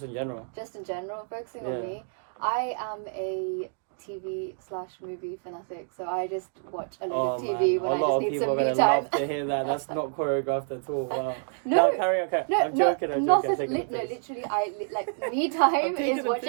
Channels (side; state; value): left; silent; digital silence